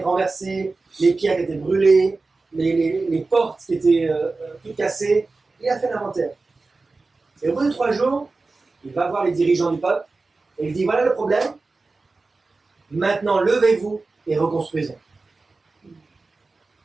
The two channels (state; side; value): quieter; left; 3.7 dB